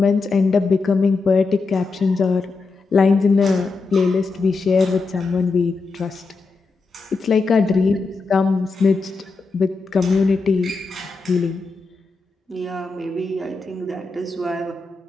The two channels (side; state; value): right; quieter; 4.0 dB